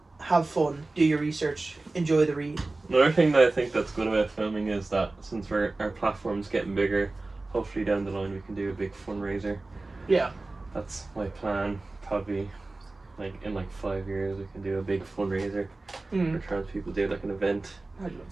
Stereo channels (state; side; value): quieter; left; 3.2 dB